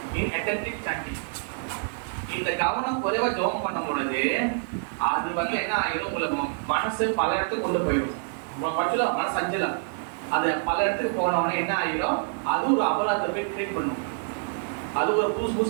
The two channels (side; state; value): left; silent; 60 dB below the other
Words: inattentive chanting. இந்த கவனம் குறைவா ஜெபம் பண்ணும் பொழுது அது வந்து என்ன ஆயிடும், உங்களுக்கு மனசு பல இடத்துக்கு கொண்டு போயிடும். பட்சம் மனசு அஞ்சலாம், அது பல இடத்துக்கு போனவொடனே என்ன ஆயிடும், அது ஒரு அபராதத்தை போய் கிரியேட் பண்ணும். அது ஒரு